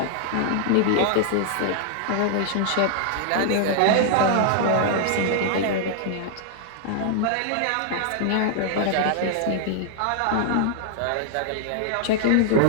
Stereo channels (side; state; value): both; different; correlation -0.01